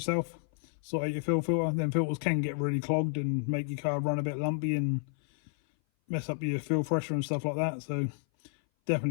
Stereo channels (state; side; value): silent; right; 57 dB below the other